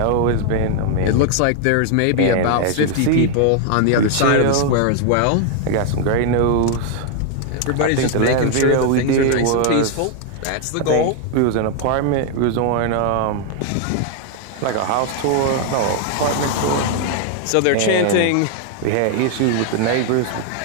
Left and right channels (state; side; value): different; both; correlation 0.00